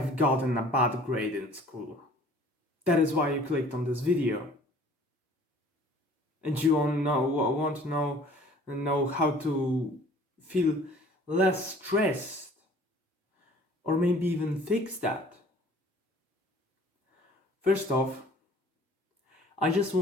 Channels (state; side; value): normal; both; correlation 0.52